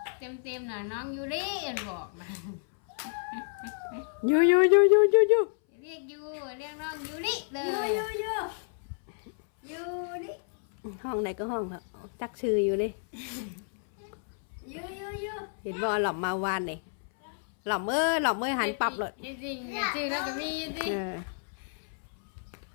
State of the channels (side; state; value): right; silent; 58 dB below the other